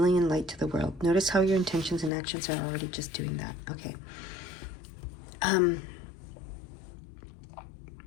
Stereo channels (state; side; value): drops out; right; at 2.1 s